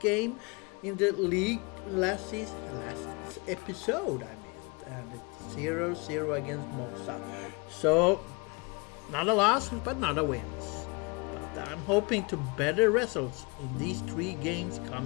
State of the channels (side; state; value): right; quieter; 29.5 dB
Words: game in the league last episode, and it's 0-0 against Mossa. So, not a loss, but not a wins. But I'm hoping to better results in these 3 games